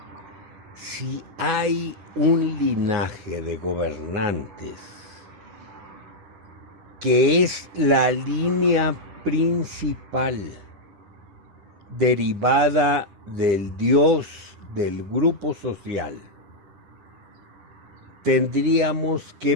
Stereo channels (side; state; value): left; late; 10 ms